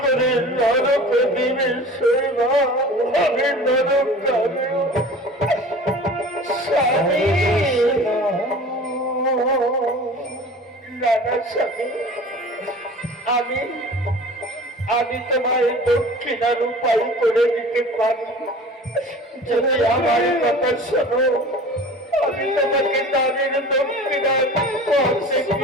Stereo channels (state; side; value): normal; both; correlation 0.41